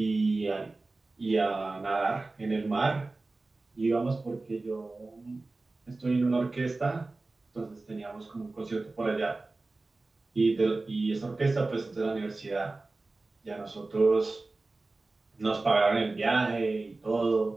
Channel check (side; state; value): left; quieter; 3.3 dB